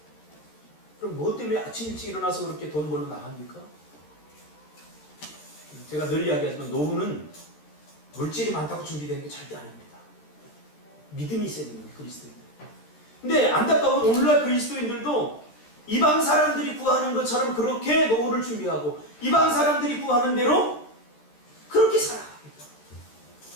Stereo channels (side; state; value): right; late; 13 ms